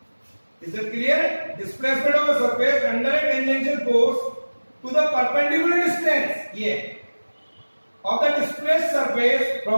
Is it clear? Displacement of a surface under a tangential force to the perpendicular distance, yeah, of the displaced surface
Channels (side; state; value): both; inverted; correlation -1.00